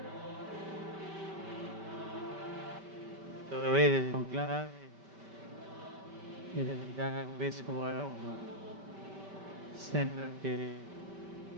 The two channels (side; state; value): left; late; 5.1 ms